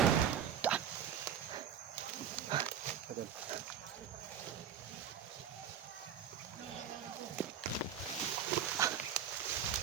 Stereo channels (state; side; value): quieter; left; 8.5 dB